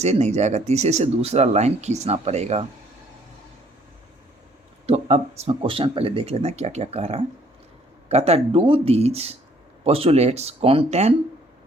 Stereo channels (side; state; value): both; normal; correlation 0.62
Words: नहीं जाएगा, तीसरे से दूसरा लाइन खींचना पड़ेगा। तो अब इसमें क्वेश्चन पहले देख लेते हैं क्या क्या कह रहा है। कहता है do these postulates contain